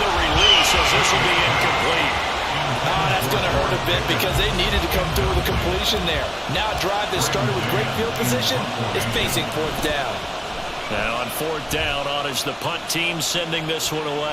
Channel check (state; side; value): identical; both; correlation 1.00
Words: the release, as this will be incomplete. Oh, that's going to hurt a bit because they needed to come through with a completion there. Now a drive that started with great field position is facing 4th down. Now on 4th down, honors the punt team sending this one